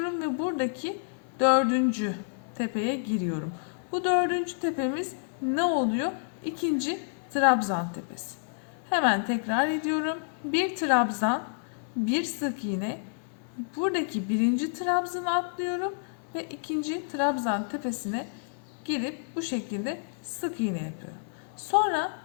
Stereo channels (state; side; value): silent; right; 59 dB below the other